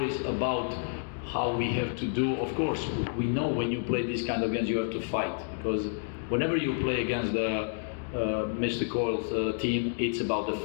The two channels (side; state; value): right; silent; digital silence